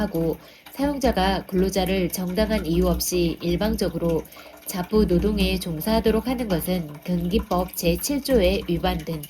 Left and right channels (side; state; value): both; identical; correlation 1.00